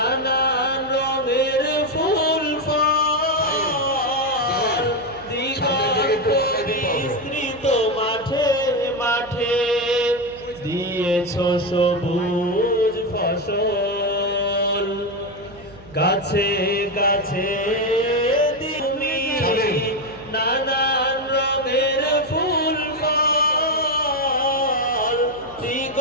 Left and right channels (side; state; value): right; noise; hum, 21 dB below the sound